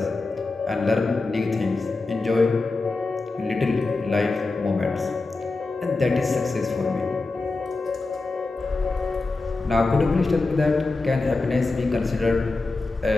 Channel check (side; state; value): right; quieter; 3.5 dB